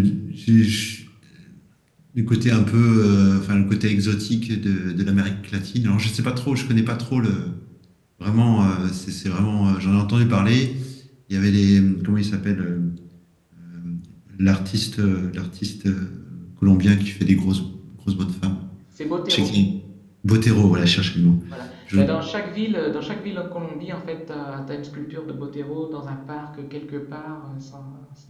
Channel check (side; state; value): both; identical; correlation 1.00